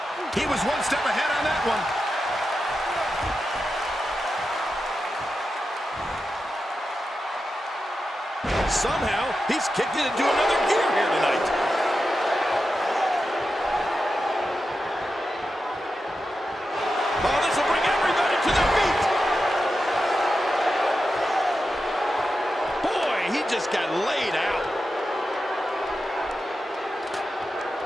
He was one step ahead on that one. Somehow, he's kicked it into another gear here tonight. Oh, this will bring everybody to their feet. Boy, he just got laid out.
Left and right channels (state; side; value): normal; both; correlation 0.90